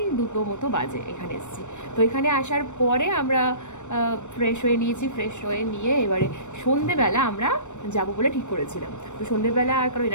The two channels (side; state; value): right; late; 0.84 ms